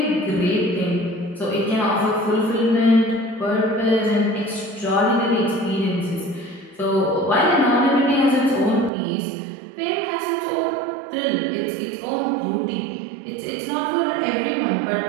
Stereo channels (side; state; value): left; drops out; at 8.9 s